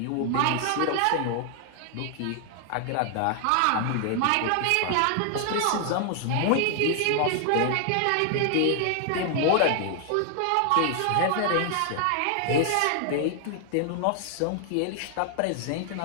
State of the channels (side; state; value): both; different; correlation 0.00